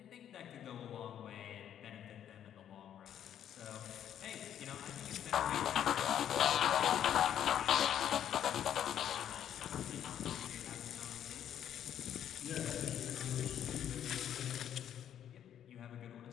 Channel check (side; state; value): right; quieter; 10.0 dB